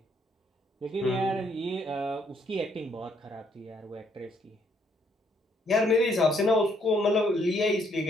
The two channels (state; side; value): normal; both; correlation 0.68